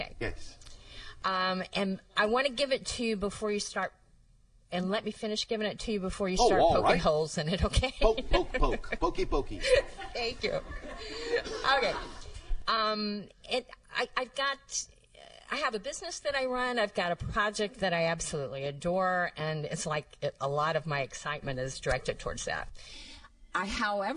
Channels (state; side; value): identical; both; correlation 1.00